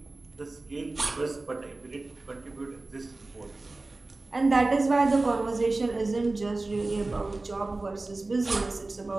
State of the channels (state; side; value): quieter; left; 3.2 dB